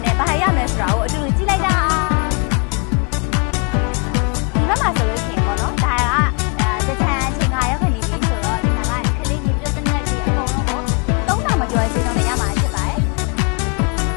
နဲ့ဘာရမလဲဆိုတာကိုအတူတူကြည့်လိုက်တာဒီဘက်မှာဆိုလို့ရှိရင်ပေါ့နော်ဒါကတကြံအချိန်ကရောက်ခဏနေပြီဆိုတော့ဒီမှာကခလေးကြီးပြုတ်တဲ့နဲ့ဒီအကုန်လုံးကို3000မကျော်ချင်းတော့လည်းရမှာဖြစ်ပါတယ်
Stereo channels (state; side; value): quieter; right; 36.6 dB